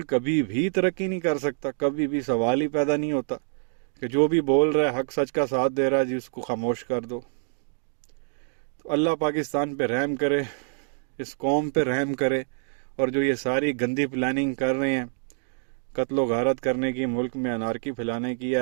कभी भी तरक्की नहीं कर सकता, कभी भी सवाल ही पैदा नहीं होता कि जो भी बोल रहा है हक सच का साथ दे रहा है जी उसको खामोश कर दो। तो अल्लाह पाकिस्तान पे रहम करे, इस कौम पे रहम करे, और जो ये सारी गंदी प्लानिंग कर रहे हैं कत्लो गारत करने की, मुल्क में अनारकी फैलाने की,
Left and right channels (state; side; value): silent; left; digital silence